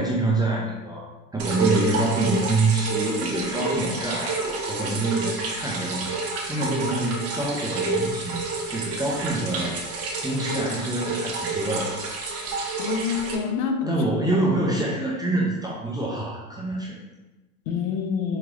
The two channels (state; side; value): normal; both; correlation 0.37